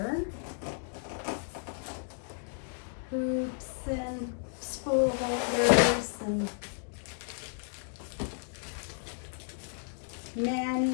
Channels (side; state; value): right; silent; 56 dB below the other